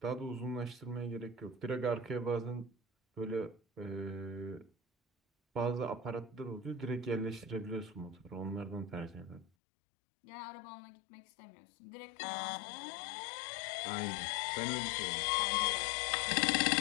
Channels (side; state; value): right; drops out; at 9.5 s